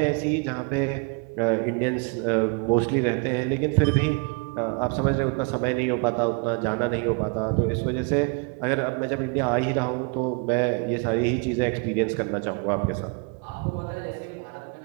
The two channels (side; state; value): left; quieter; 33.5 dB